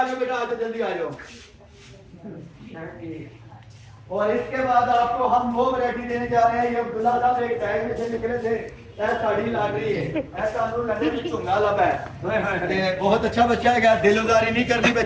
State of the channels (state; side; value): identical; both; correlation 1.00